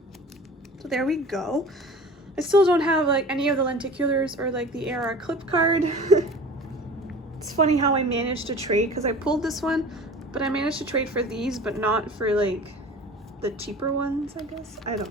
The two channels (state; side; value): normal; both; correlation 0.41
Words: So there we go. I still don't have like any of the lenticulars or like the AR clip card. It's funny how I managed to trade because I pulled this one, but I managed to trade for these, but not for like the cheaper ones, I guess. I